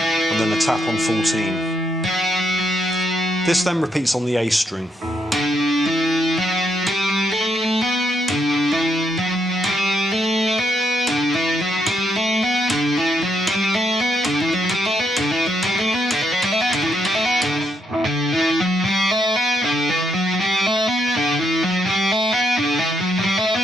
then a tap on 14. This then repeats on the A string.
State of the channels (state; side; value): normal; both; correlation 0.77